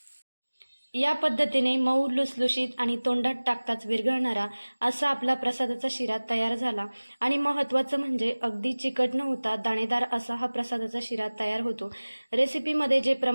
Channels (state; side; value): inverted; both; correlation -1.00